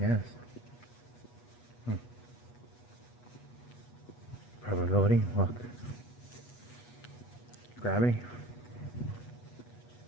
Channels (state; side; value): late; right; 8.2 ms